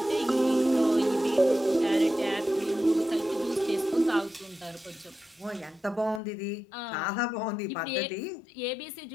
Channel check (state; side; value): drops out; right; at 6.2 s